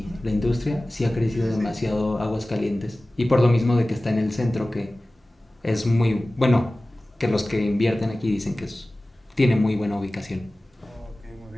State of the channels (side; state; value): both; normal; correlation 0.97